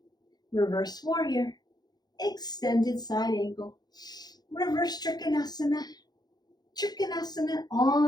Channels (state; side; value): late; right; 0.19 ms